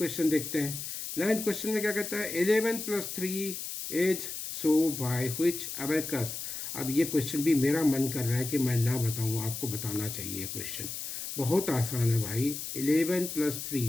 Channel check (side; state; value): left; noise; hiss, 6 dB below the sound